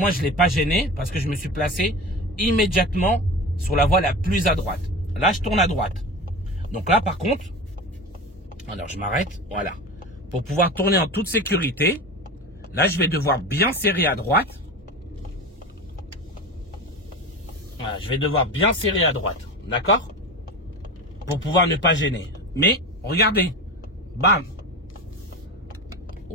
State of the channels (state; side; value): normal; both; correlation 0.28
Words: je ne l'ai pas gêné parce que je me suis placé immédiatement sur la voie la plus à droite. Là, je tourne à droite. Donc là, par contre, alors je m'arrête, voilà. Pour pouvoir tourner en toute sécurité, là, je vais devoir bien serrer à droite. Voilà, je vais devoir bien serrer à droite, d'accord? Pour pouvoir ne pas gêner. Mais, regardez, bam.